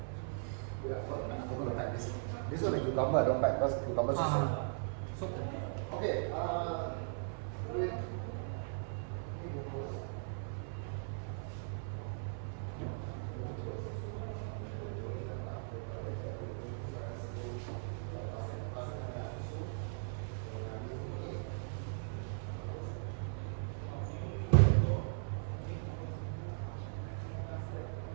Yeah, I forgot to pack this. This one the cucumber I don't pack because cucumber is so. So, Okay. Wait.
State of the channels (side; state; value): left; silent; 52 dB below the other